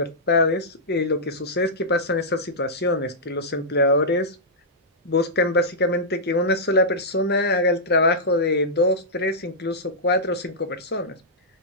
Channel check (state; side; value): normal; both; correlation -0.12